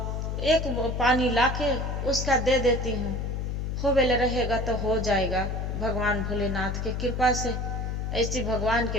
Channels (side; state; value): left; noise; hum, 2 dB below the sound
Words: एक पानी लाके उसका दे देती हूँ, हो बेले रहेगा तो हो जाएगा भगवान भोलेनाथ के कृपा से। ऐसी भगवान